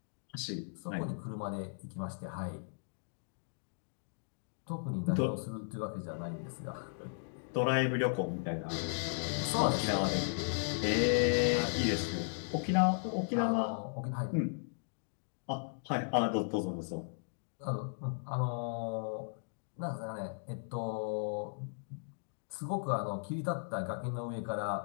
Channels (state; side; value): silent; right; digital silence